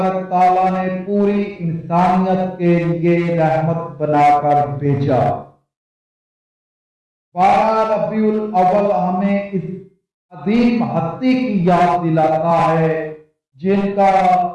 تعالیٰ نے پوری انسانیت کے لیے رحمت بنا کر بھیجا. 12 ربیع الاول ہمیں اس عظیم ہستی کی یاد دلاتا ہے جن کا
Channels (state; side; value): identical; both; correlation 1.00